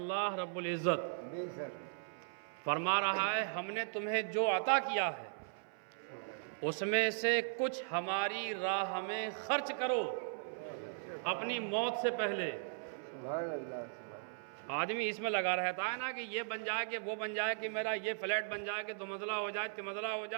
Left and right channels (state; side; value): silent; left; 53 dB below the other